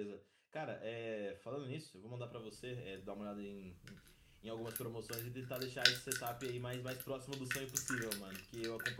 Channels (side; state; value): both; identical; correlation 1.00